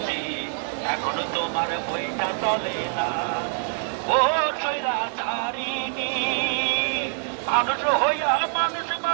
এখন তোমার বইটা চলে না। ও সৈরাচারিণী, মানুষ হইয়া মানুষ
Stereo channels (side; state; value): left; silent; digital silence